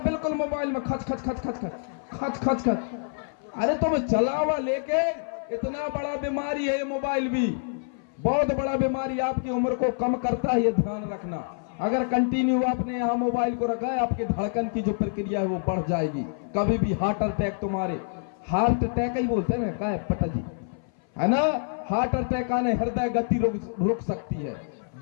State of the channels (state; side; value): silent; right; 57 dB below the other